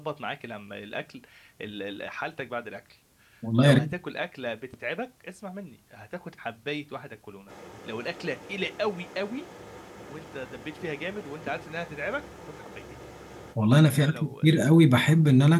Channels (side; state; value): both; identical; correlation 1.00